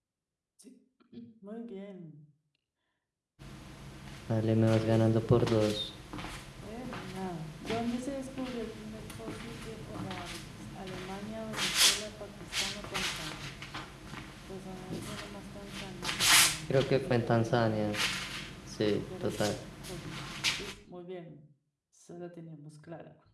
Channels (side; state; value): both; identical; correlation 1.00